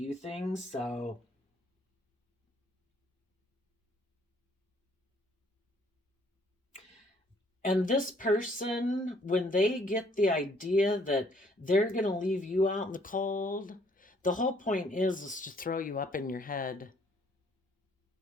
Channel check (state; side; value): normal; both; correlation 0.64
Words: things. So, and this person, when they get the idea that they're going to leave you out in the cold, the whole point is to throw you up in your head.